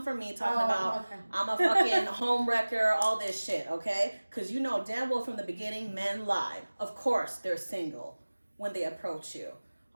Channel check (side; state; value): both; inverted; correlation -1.00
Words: for me talking about I'm a fucking home wrecker, all this shit, okay? Because you know damn well from the beginning, men lie. Of course, they're single when they approach you.